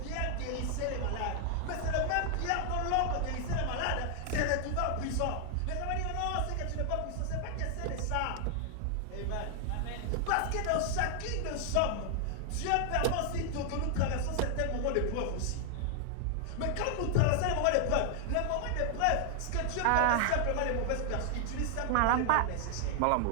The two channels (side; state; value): both; different; correlation 0.00